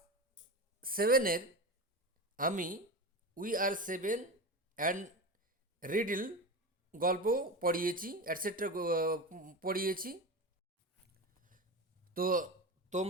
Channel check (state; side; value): normal; both; correlation 0.23